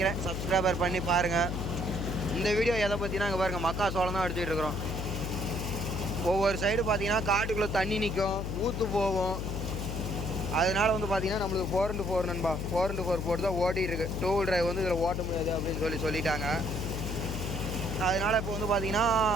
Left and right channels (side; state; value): left; noise; hum, 3 dB below the sound